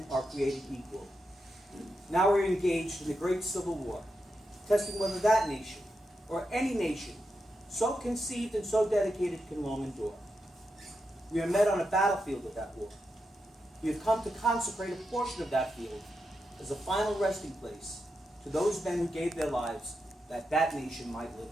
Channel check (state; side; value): normal; both; correlation 0.86